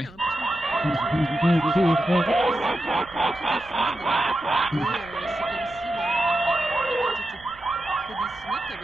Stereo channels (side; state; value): right; noise; rumble, 23 dB below the sound